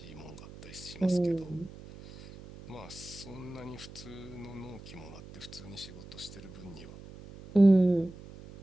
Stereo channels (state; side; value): noise; right; hum, 16 dB below the sound